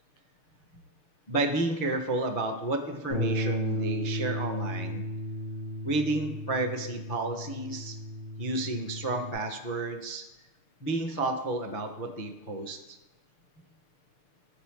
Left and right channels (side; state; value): right; late; 6.6 ms